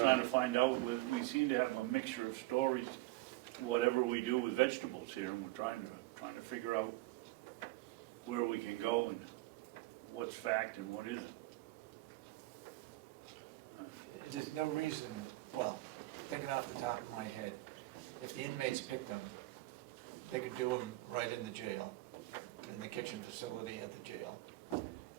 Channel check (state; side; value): quieter; left; 19.6 dB